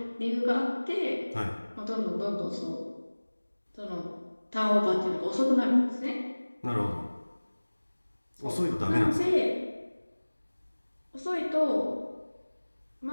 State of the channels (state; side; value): inverted; both; correlation -1.00